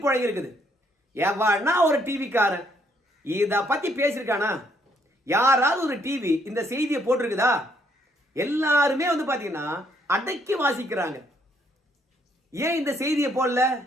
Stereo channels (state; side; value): normal; both; correlation 0.70